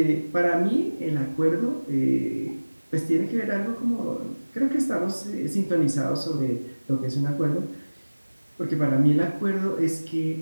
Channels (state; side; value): inverted; both; correlation -1.00